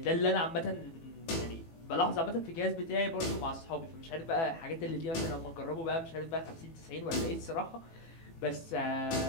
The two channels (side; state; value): right; late; 18 ms